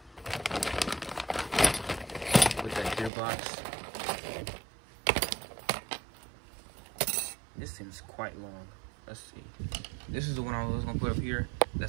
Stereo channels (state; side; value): drops out; left; at 3.1 s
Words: with that gearbox. This seems quite long. Let's see. This is the one I was gonna put up here.